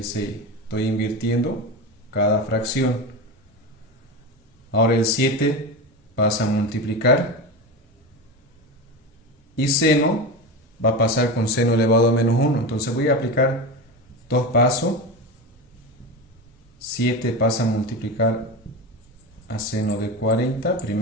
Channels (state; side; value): normal; both; correlation 0.22